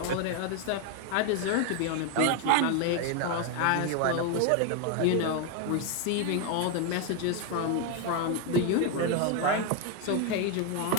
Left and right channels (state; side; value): different; both; correlation 0.01